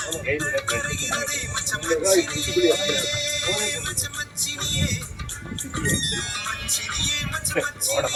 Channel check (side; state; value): both; identical; correlation 1.00